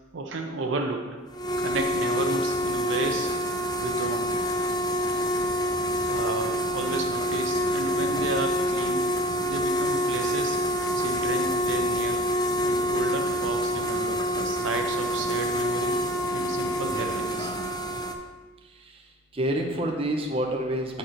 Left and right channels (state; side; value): normal; both; correlation 0.41